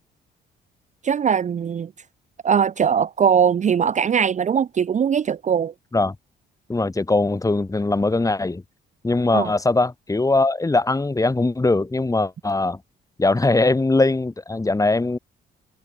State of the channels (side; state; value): both; normal; correlation 0.57